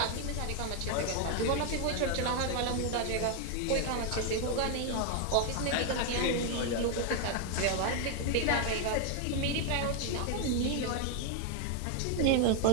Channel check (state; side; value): different; both; correlation 0.01